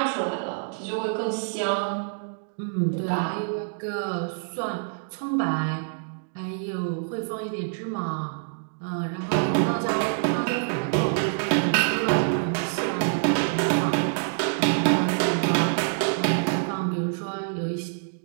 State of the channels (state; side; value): silent; left; digital silence